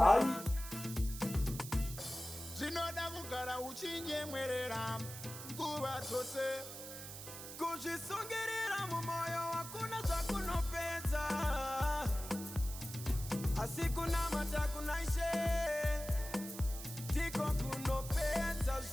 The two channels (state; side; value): noise; right; hiss, 11 dB below the sound